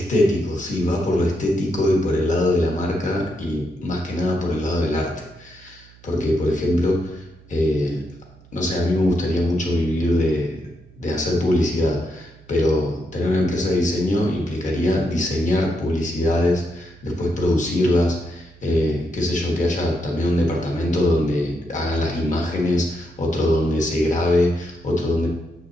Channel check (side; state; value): right; noise; hum, 25 dB below the sound